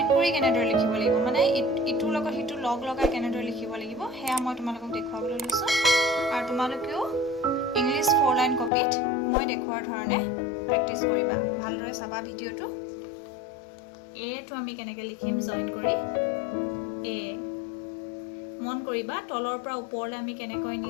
কৰি কেনেদৰে লিখিব লাগিব মানে ইটোৰ লগত সিটো লগ লগাই কেনেদৰে লিখিব লাগিব সেয়া মই তোমালোকক দেখুৱাবলৈ লৈছোঁ আৰু তোমালোকেও ইংলিছ 4 লাইন কপিত মই দেখুৱাৰ ধৰণে প্ৰেক্টিছ কৰিবা ভালদৰে চাবা ভিডিঅ'টো এটো আমি কেনেকৈ লিখিম জইন কৰি এ মন কৰিবা তলৰ পৰা ওপৰলৈ আমি কেনেকৈ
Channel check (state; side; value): drops out; right; at 8.7 s